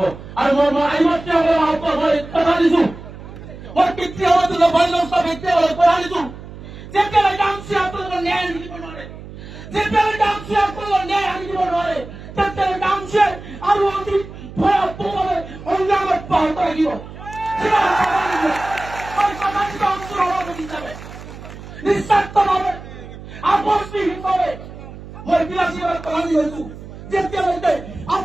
আৰু মই আইমাতৃসকলক আহ্বান মই কথা দিছো, মই পিতৃসকলক পিতৃসকলক কথা দিছো, যেতিয়ালৈকে আমচি আপোনালোকৰ ন্যায় দিব নোৱাৰে, যেতিয়ালৈকে আমচি আপোনালোকৰ ন্যায় আনি দিব নোৱাৰে, তেতিয়ালৈকে আমচিয়ে আৰু অতি ভয়াৱহভাৱে সংগ্ৰাম অব্যাহত ৰাখিব। নিস্বাৰ্থভাৱে আপোচবিহীনভাৱে মই বিলাসীবাদ পালন হৈছো। যেতিয়ালৈকে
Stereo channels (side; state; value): right; noise; hum, 14 dB below the sound